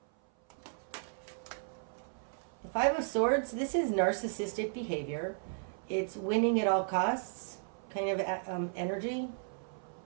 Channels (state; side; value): silent; left; 55 dB below the other